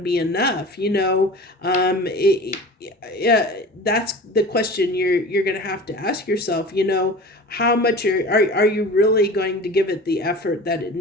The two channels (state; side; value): normal; both; correlation 0.37